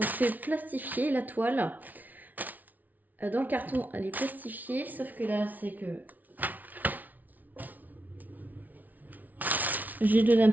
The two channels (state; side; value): late; left; 0.078 ms